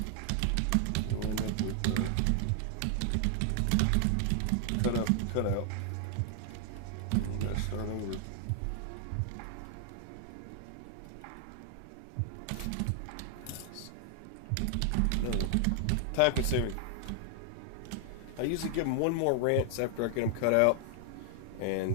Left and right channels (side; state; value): both; different; correlation 0.00